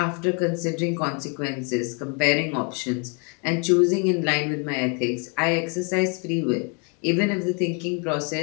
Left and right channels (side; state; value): right; quieter; 35.7 dB